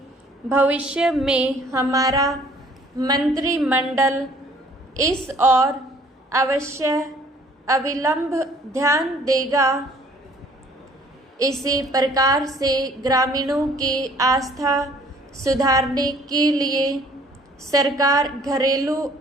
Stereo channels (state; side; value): normal; both; correlation 0.57